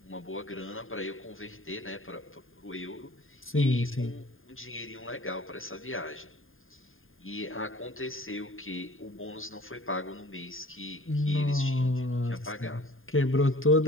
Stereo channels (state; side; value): late; right; 0.59 ms